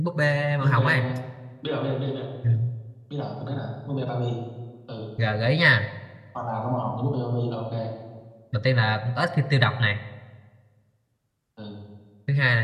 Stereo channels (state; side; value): identical; both; correlation 1.00